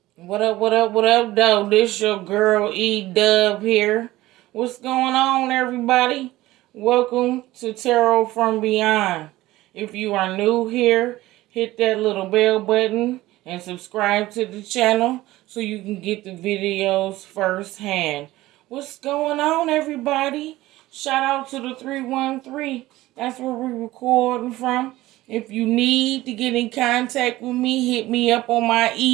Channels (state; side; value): quieter; left; 17.2 dB